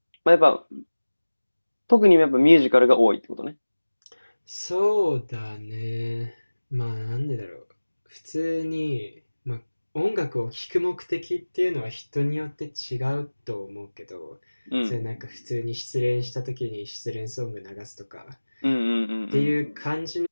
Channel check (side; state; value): both; inverted; correlation -1.00